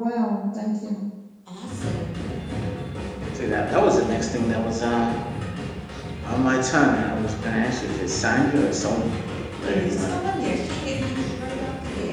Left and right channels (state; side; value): identical; both; correlation 1.00